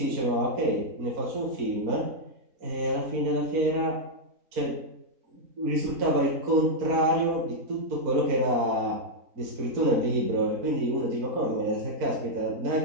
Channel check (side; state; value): left; late; 3.9 ms